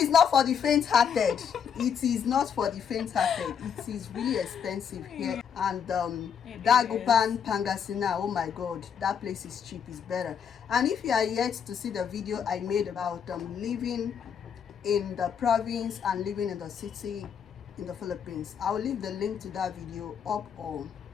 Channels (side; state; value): right; quieter; 7.6 dB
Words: not for the faint-hearted. It is not for the faint-hearted. It is really expensive here. And Dagupan, Pangasinan, oh my god, that place is cheap, is better. And if you are yet to see the video I made about living in the province and living in the city in the Philippines, I'll leave the link to that video up or